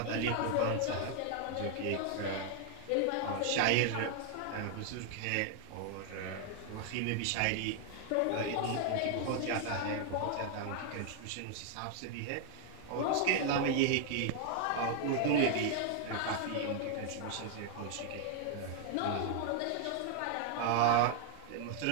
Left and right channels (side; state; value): both; different; correlation 0.00